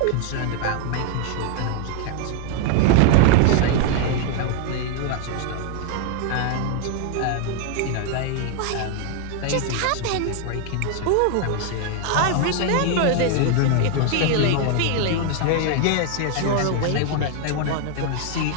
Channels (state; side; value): different; both; correlation 0.00